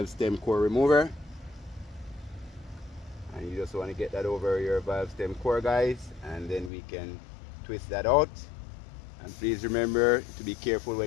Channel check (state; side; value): drops out; right; at 6.7 s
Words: stem core remover. And you just want to get that over your valve stem core guys, and then we can twist that out. And please remember to be careful